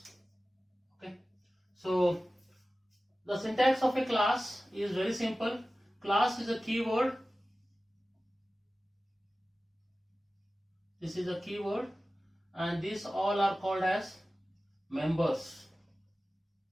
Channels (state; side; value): normal; both; correlation 0.96